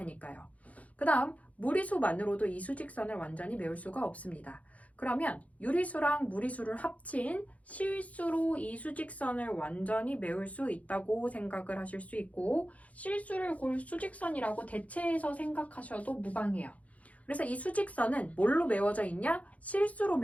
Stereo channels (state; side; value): late; right; 0.068 ms